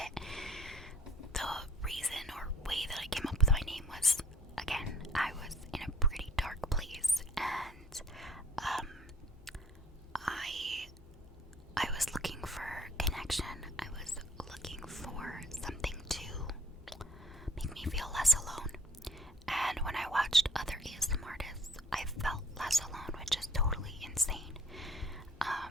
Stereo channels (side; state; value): both; normal; correlation 0.57